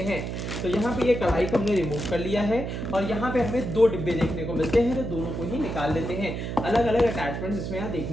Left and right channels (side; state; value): right; noise; hum, 4 dB below the sound